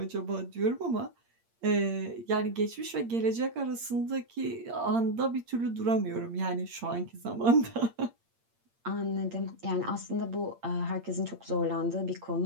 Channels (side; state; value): left; late; 8.7 ms